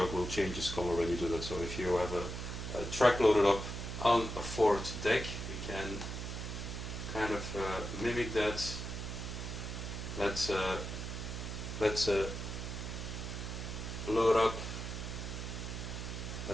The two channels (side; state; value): right; noise; hum, 6 dB below the sound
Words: will change its color when you do that. So if you have a track loaded up on a 4th deck, we can kind of mimic that let's load up